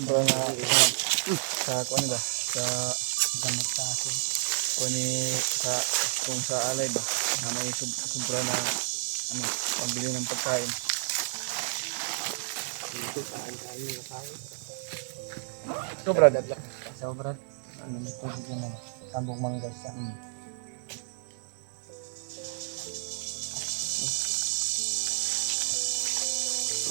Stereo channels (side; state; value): left; silent; 58 dB below the other